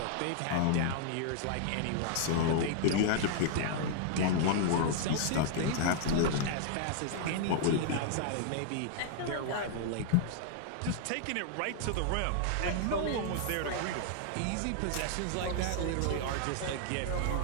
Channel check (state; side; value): different; both; correlation -0.01